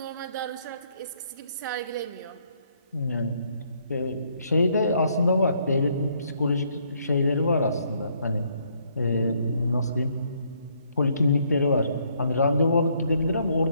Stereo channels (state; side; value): inverted; both; correlation -0.69